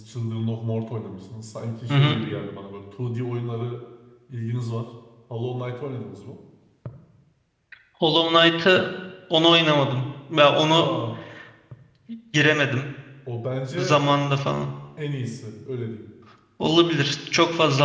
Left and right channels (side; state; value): both; identical; correlation 1.00